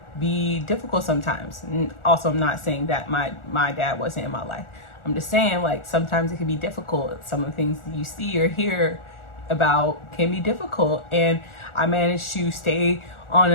be difficult sometimes. And also, I'm not saying that my dad wasn't in my life. I'm just saying sometimes it can be difficult. Some of the things that you see or hear about can be difficult, and I managed to stay on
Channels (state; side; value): late; right; 1.4 ms